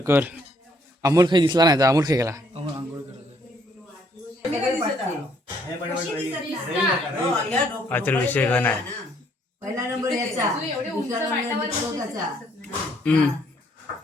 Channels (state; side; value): normal; both; correlation 0.67